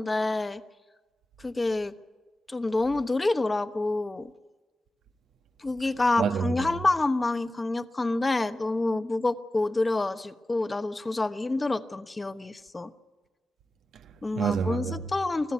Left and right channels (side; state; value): both; normal; correlation 0.94